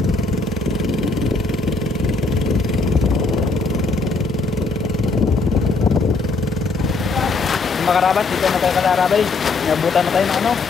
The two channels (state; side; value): quieter; right; 3.7 dB